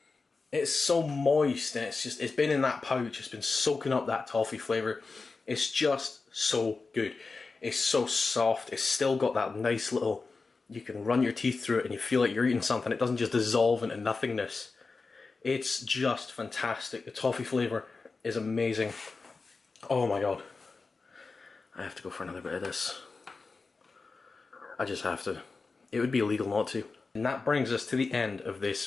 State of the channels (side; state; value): right; quieter; 4.1 dB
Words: It's so moist, and it's been in that pouch, it's been soaking up that toffee flavour. It's just so good. It's so soft, it's still got that nice little, you can run your teeth through it and you feel like you're eating something. It doesn't just dissolve into nothingness. It's just fantastic. The toffee flavour is amazing. Oh my god. I have to go for another bit of this. I just have to. It would be illegal not to. And that brings us to the end of